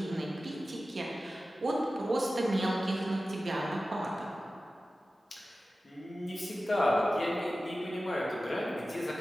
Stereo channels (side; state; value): both; normal; correlation 0.95